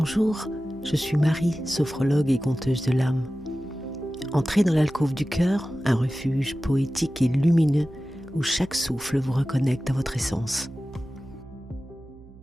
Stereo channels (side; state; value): right; noise; hum, 21 dB below the sound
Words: je suis Marie, sophrologue et conteuse de l'âme. Entrez dans l'alcôve du cœur, un refuge poétique et lumineux où chaque souffle vous reconnecte à votre essence.